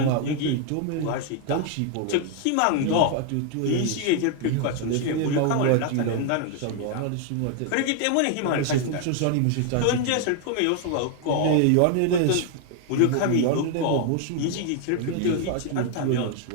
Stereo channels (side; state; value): both; different; correlation 0.00